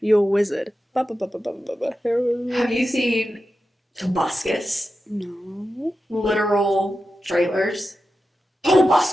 a wizard. Harry. Have you seen Tobuscus? No. Literal trailers.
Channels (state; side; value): normal; both; correlation 0.91